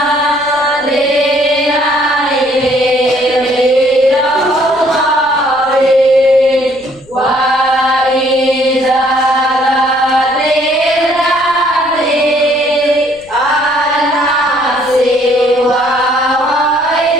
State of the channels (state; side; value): noise; left; rumble, 27 dB below the sound